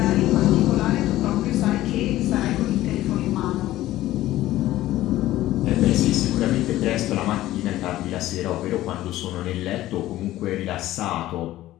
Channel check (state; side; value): quieter; right; 15.2 dB